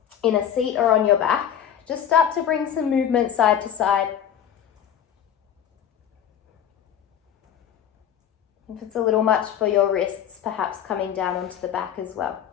in a seat or on your back, just start to bring some movement side to side. If it's a little much for your wrists, perhaps coming down onto the back as well.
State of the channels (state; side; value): quieter; right; 9.4 dB